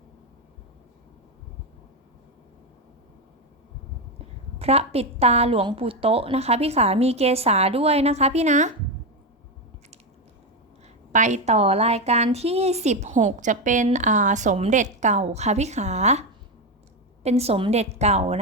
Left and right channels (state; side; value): normal; both; correlation 0.11